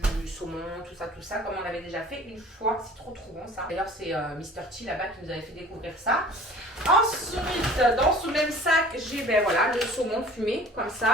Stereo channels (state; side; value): normal; both; correlation 0.47